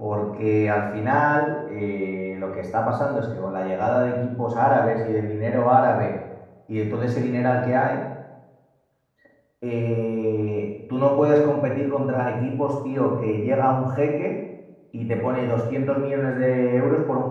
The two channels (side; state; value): both; identical; correlation 1.00